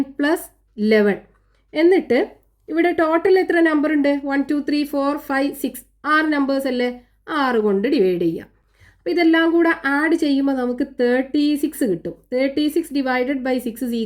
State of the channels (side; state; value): both; identical; correlation 1.00